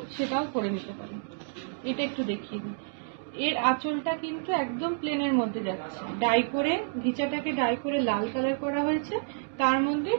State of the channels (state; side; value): silent; left; digital silence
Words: সেটাও করে নিতে পারেন। এটা একটু দেখিয়ে দিই। এর আঁচলটা কিন্তু একদম প্লেনের মধ্যে যাচ্ছে, ডাই করে, ঘিচাটাকে ডাই করে লাল কালার করা হয়েছে, তার মধ্যে